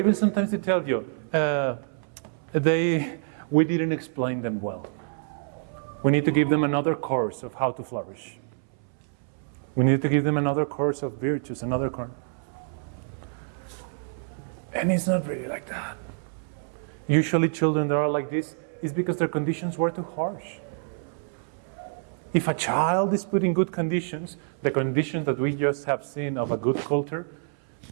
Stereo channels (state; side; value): silent; left; 60 dB below the other